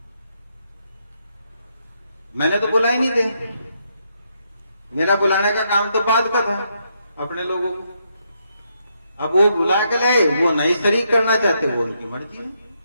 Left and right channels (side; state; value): both; inverted; correlation -0.78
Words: मैंने तो बुला ही नहीं थे, मेरा बुलाने का काम तो बाद का था अपने लोगों को। अब वो बुला के लाए, वो नहीं शरीक करना चाहते, वो उनकी मर्जी है।